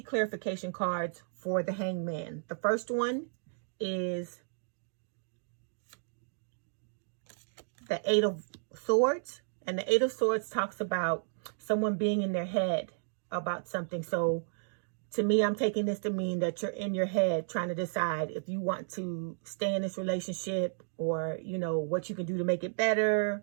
cards for the Hanged Man. The first one is the Eight of Swords. And the Eight of Swords talks about someone being in their head about something. So to me, I'm taking this to mean that you're in your head trying to decide if you want to stay in this relationship or, what you can do to make it better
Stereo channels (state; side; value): silent; left; digital silence